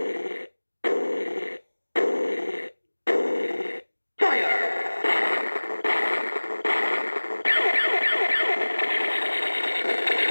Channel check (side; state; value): both; inverted; correlation -1.00